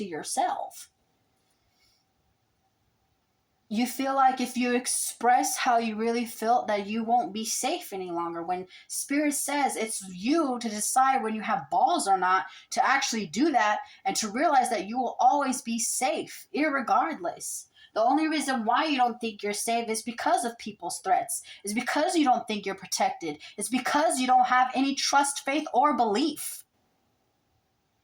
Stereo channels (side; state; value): both; identical; correlation 1.00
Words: yourself. You feel like if you express how you really feel that you won't be safe any longer, when spirit says it's you to decide when you have balls or not to actually do that, and to realize that you will always be safe irregardless. The only reason why you don't think you're safe is because of people's threats. It's because you don't think you're protected. It's because you don't have any trust, faith, or belief.